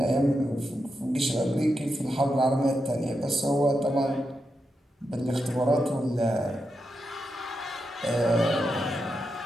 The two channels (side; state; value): both; normal; correlation 0.86